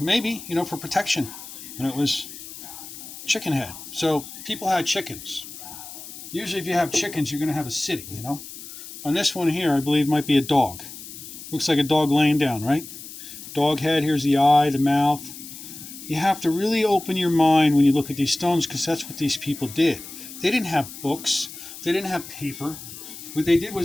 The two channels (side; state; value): left; noise; hiss, 13 dB below the sound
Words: you know, for protection. And it was chicken head. So people had chickens. Usually if you have chickens, you're going to have a city, you know. On this one here, I believe might be a dog. Looks like a dog laying down, right? Dog head, here's the eye, the mouth. You have to really open your mind when you look at these stones, because that's what these people did. They didn't have books. They didn't have paper. What they did